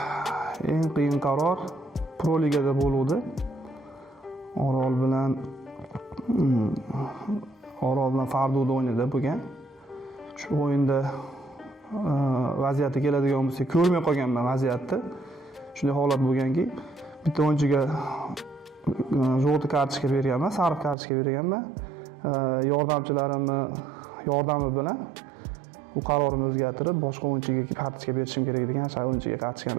eng qiyin qaror Pro Ligada bo'ldi. Orol bilan Fardo'da o'ynadi bo'lgan. Shu o'yinda vaziyatga keladigan bo'lsak, ko'rmay qolganman vaziyatni. Shunday holat bo'lganki, bitta o'yinchiga jo'g'ti kartochka berganman, sariq kartochka berganman. Yordamchilarimni yordami bilan bu qarorimni o'zgartirib, boshqa o'yinchiga kartochka berishim kerak degan o'sha o'yinchiga kartochkani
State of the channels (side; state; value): left; drops out; at 21.0 s